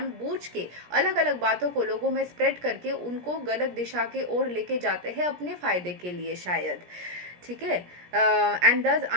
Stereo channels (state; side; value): late; left; 17 ms